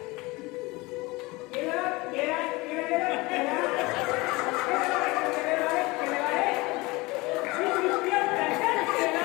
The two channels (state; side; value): quieter; right; 23.0 dB